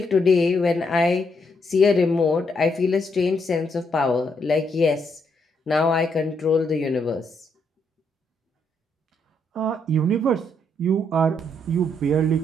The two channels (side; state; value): both; normal; correlation 0.75